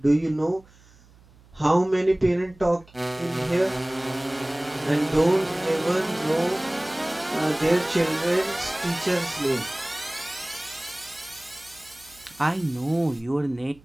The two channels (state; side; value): noise; right; hum, 27 dB below the sound